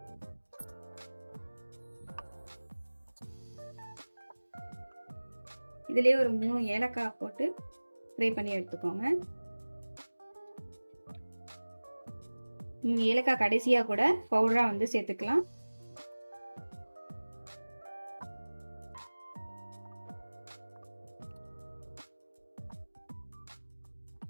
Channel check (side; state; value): both; inverted; correlation -1.00